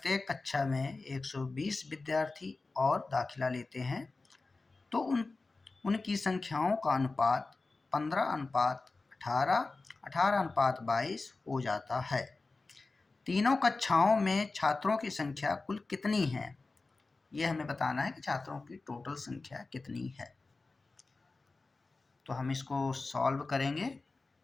कक्षा में 120 विद्यार्थी और दाखिला लेते हैं तो उनकी संख्याओं का अनुपात 15:18, 18:22 हो जाता है। तीनों कक्षाओं में छात्रों की संख्या कुल कितनी है? ये हमें बताना है कि छात्रों की टोटल संख्या कितनी है। तो हम इसको सॉल्व करेंगे।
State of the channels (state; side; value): quieter; right; 3.6 dB